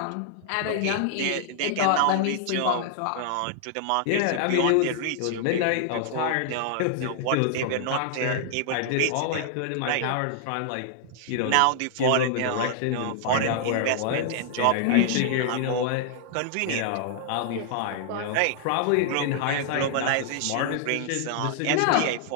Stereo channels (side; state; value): both; different; correlation -0.01